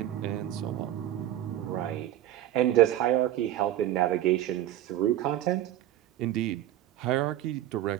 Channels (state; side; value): quieter; left; 12.8 dB